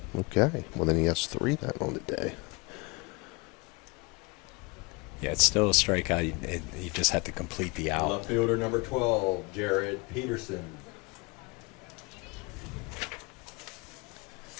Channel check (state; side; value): quieter; right; 26.5 dB